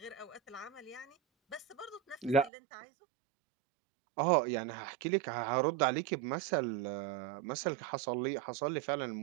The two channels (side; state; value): left; drops out; at 2.5 s